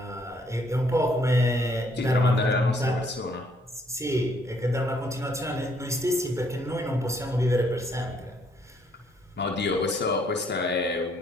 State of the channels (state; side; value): normal; both; correlation 0.67